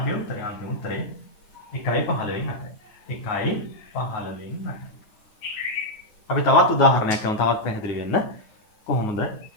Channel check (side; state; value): right; late; 9.6 ms